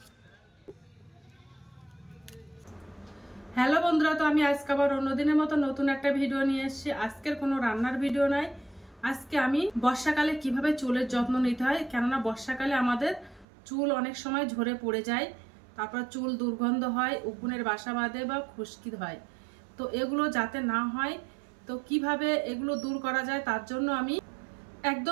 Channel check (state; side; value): drops out; left; at 13.5 s